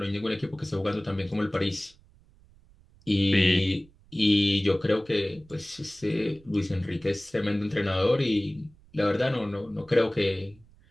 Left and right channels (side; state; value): right; noise; rumble, 27 dB below the sound